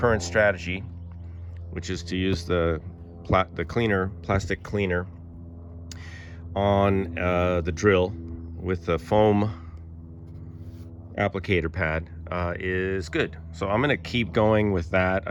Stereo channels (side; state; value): both; identical; correlation 1.00